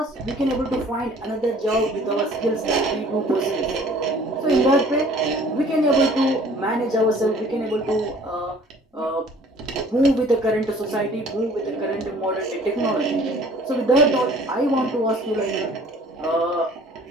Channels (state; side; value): normal; both; correlation 0.52